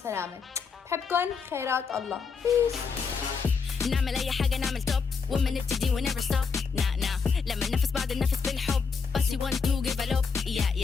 بحبكم. خيرات الله. نعمل اي حاجه نعمل توب وما نبتدي و never stop لما ننفس بعض النفس بالحب بس you want to give a love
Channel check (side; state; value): right; quieter; 5.4 dB